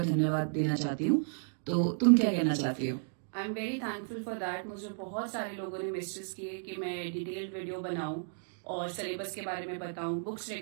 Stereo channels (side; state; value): left; silent; digital silence